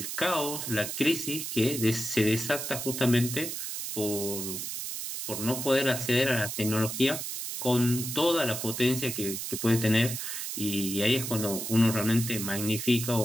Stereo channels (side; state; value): right; noise; hiss, 5 dB below the sound